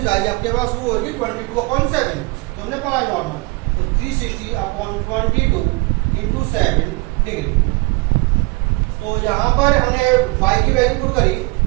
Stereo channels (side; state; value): left; quieter; 26.1 dB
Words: आई आपके पास वो होगी 22/7, तो हमने पढ़ा नॉर्मल, तो 360 अपॉन 22 इंटू 7 डिग्री। तो यहां पर हमने पाई की वैल्यू पुट करी,